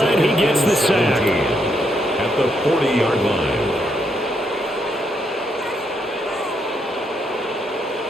He gets the sack. At the 40-yard line.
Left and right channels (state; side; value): normal; both; correlation 0.77